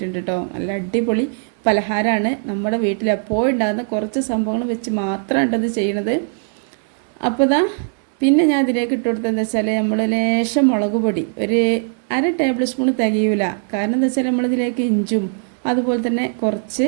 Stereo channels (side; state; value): left; silent; 66 dB below the other